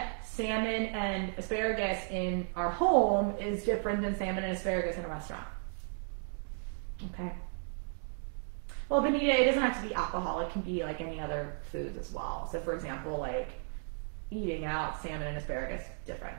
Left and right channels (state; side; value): silent; left; 55 dB below the other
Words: salmon and asparagus in our home is different than salmon and asparagus in a restaurant. Okay. Well, Benita, it doesn't have to be alcohol. It can be like any other foods as well. So for example, like eating out salmon and asparagus, different,